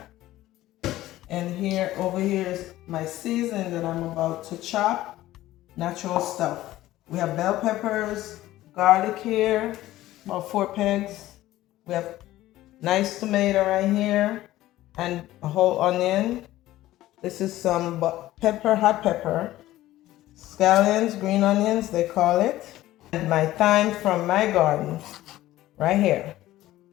And here, over here is my seasoning that I'm about to chop. Natural stuff. We have bell peppers, garlic here, about 4 pegs. We have nice tomato right here, and a whole onion. This is some pepper, hot pepper, scallions, green onions, they call it. And my thyme from my garden, right here.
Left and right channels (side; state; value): right; quieter; 15.4 dB